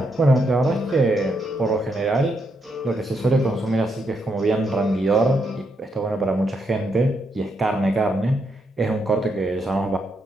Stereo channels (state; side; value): normal; both; correlation 0.79